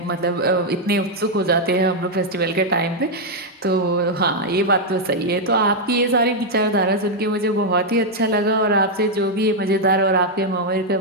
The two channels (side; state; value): both; normal; correlation -0.01